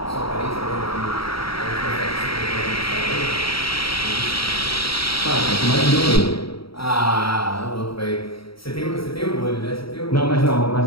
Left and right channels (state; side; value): late; right; 0.75 ms